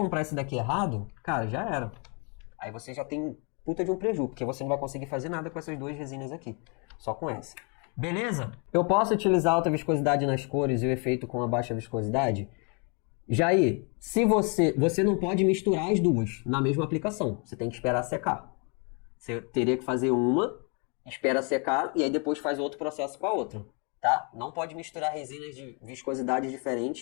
esse daqui errado, cara, já era. Aí você já tem puta de um prejuízo, porque você não vai conseguir fazer nada com essas duas resinas aqui. Só com essa. Beleza? Eu posso utilizar alta viscosidade nas cores e o efeito com a baixa viscosidade? Jair, se você não pode misturar as duas na mesma aplicação. Você tem que esperar secar. Você teria que fazer uma, espera secar e aí depois faz outro processo com a outra. Tá? Não pode misturar resinas de viscosidade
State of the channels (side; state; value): right; quieter; 35.4 dB